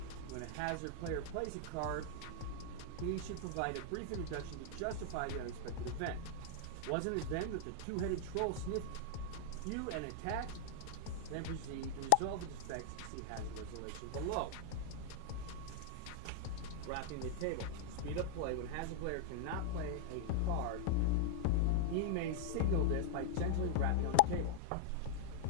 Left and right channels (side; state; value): both; different; correlation -0.01